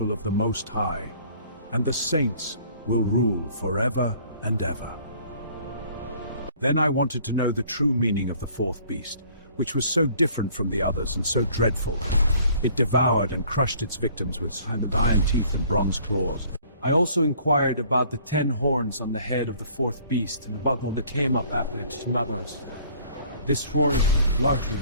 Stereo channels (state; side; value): inverted; both; correlation -0.55